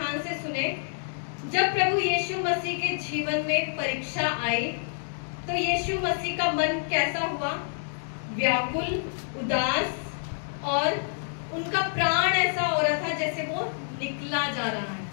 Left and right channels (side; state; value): right; silent; digital silence